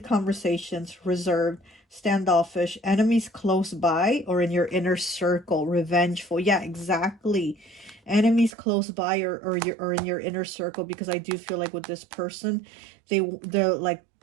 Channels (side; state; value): left; drops out; at 8.5 s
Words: conversations, reserved, standoffish, enemies close by or in your inner circle, revengeful. Yeah, exactly. Enemies close by or in your inner circle, because I do feel like with this person, they're like,